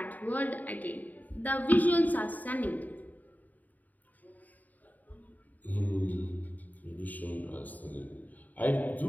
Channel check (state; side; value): late; right; 0.080 ms